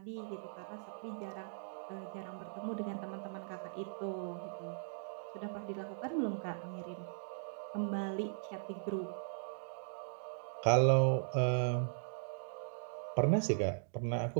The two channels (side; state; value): left; silent; digital silence